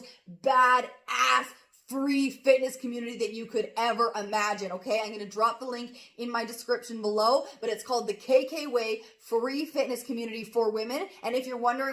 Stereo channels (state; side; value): identical; both; correlation 1.00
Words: badass free fitness community that you could ever imagine, okay? I'm going to drop the link in my description below, but it's called the KK Way Free Fitness Community for Women. And if you're